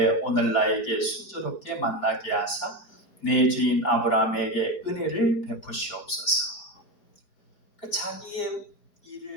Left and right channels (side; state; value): right; late; 4.9 ms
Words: 오늘 나에게 순조롭게 만나게 하사 내 주인 아브라함에게 은혜를 베푸시옵소서. 자기의